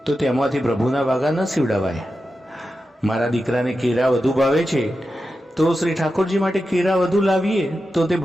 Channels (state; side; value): normal; both; correlation 0.91